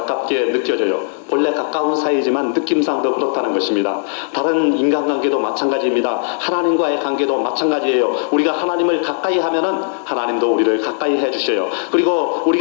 느껴져요. 본래 가까운 사이지만 느낌상 더 그렇다는 것입니다. 다른 인간관계도 마찬가지입니다. 하나님과의 관계도 마찬가지예요. 우리가 하나님을 가까이 하면은 하나님도 우리를 가까이 해주셔요. 그리고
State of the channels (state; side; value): silent; right; digital silence